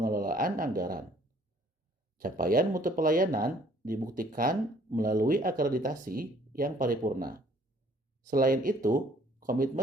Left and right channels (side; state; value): both; normal; correlation 0.59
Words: anggaran. Capaian mutu pelayanan dibuktikan melalui akreditasi yang paripurna. Selain itu,